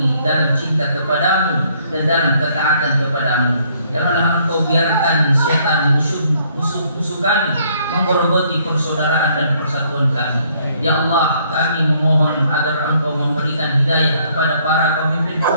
dalam cinta kepadamu dan dalam ketaatan kepadamu. Janganlah Engkau biarkan setan musuh kami menggerogoti persaudaraan dan persatuan kami. Ya Allah, kami memohon agar Engkau memberikan hidayah kepada para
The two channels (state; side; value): inverted; both; correlation -0.66